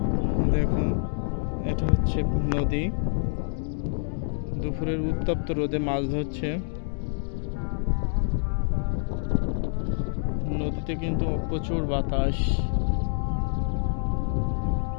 দেখুন, এটা হচ্ছে নদী। দুপুরের উত্তপ্ত রোদে মাছ ধরছে। নদীতে কিন্তু প্রচুর বাতাস।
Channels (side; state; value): right; silent; digital silence